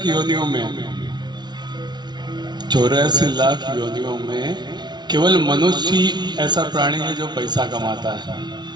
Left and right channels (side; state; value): left; late; 0.20 ms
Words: योनियों में केवल मनुष्य ही ऐसा प्राणी है जो पैसा कमाता है,